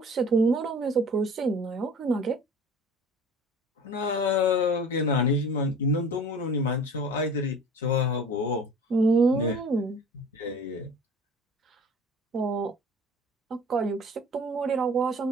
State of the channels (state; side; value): normal; both; correlation 0.43